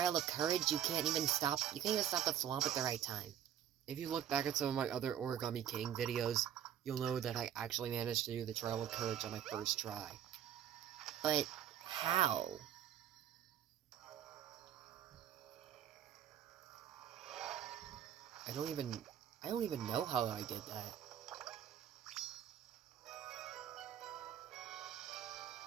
of Courage, you can't even stop the swamp at the right time. If you look back at some of my other Origami King videos, you'll know that I actually managed to do the Trial of Courage on my first try. But how? I don't even know how I did that.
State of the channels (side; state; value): left; quieter; 10.1 dB